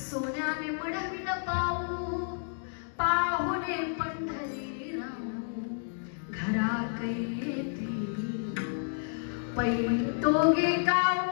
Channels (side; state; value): right; silent; digital silence